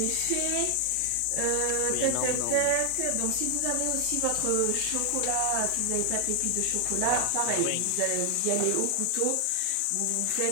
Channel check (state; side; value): different; both; correlation 0.00